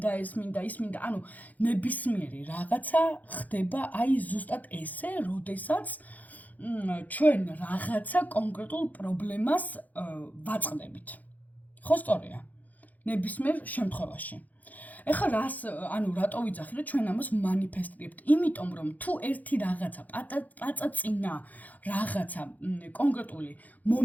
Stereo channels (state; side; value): late; right; 0.080 ms